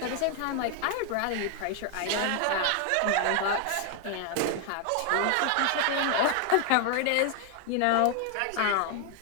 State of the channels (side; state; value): both; different; correlation 0.00